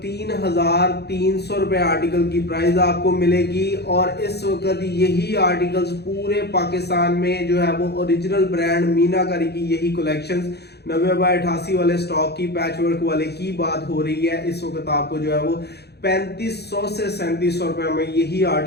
3,300 रुपए आर्टिकल की प्राइस आपको मिलेगी। और इस वक्त यही आर्टिकल्स पूरे पाकिस्तान में जो है वो ओरिजिनल ब्रांड मीनाकारी की यही कलेक्शंस 90/88 वाले स्टॉक की पैच वर्क वाले की बात हो रही है। इस वक्त आपको जो है वो 3500 से 3700 रुपए में यही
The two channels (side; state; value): right; late; 0.48 ms